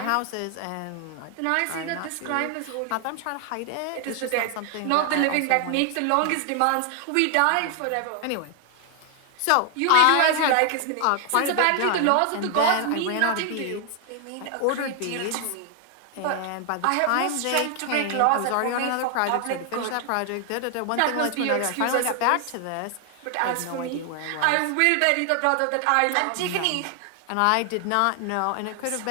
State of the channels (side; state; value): both; different; correlation 0.00